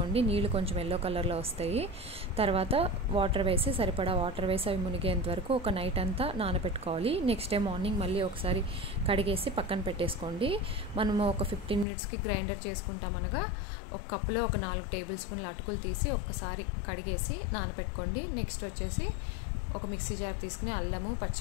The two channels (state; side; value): drops out; right; at 11.9 s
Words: నీళ్ళు కొంచెం ఎల్లో కలర్లో వస్తాయి. తర్వాత వాటర్ వేసి సరిపడా వాటర్ వేసి అవి మునిగేంత వరకు ఒక నైట్ అంతా నానబెట్టుకోవాలి. నెక్స్ట్ డే మార్నింగ్ మళ్ళీ ఒకసారి కడిగేసి పక్కన పెట్టేసుకోండి. మనము ఒక 15 మినిట్స్కి గ్రైండర్ చేసుకుంటాం అనగా ఒక కప్పులో ఒక 4 టేబుల్ స్పూన్ల అటుకులు తీసి ఒక్కసారి కడిగేసి నానబెట్టుకోండి. నెక్స్ట్ వచ్చేసి ఒక మిక్సీ జార్ తీసుకుని అల్లము,